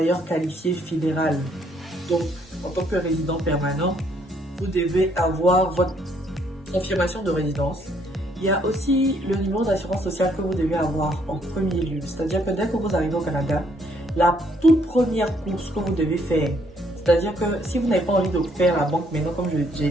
qualifié fédéral, donc en tant que résident permanent, vous devez avoir votre confirmation de résidence. Il y a aussi le numéro d'assurance sociale que vous devez avoir en premier lieu, c'est-à-dire que dès que vous arrivez au Canada, la toute première course que vous devez faire, c'est-à-dire que si vous n'avez pas envie de faire la banque maintenant, comme j'ai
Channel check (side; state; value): both; normal; correlation 0.68